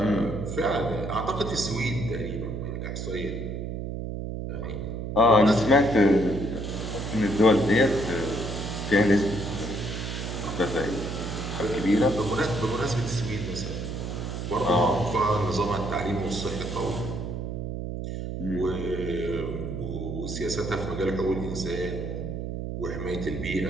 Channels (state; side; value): noise; right; hum, 5 dB below the sound